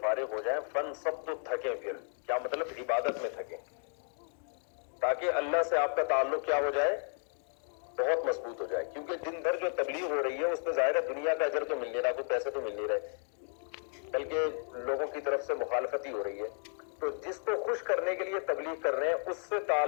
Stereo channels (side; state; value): right; silent; 55 dB below the other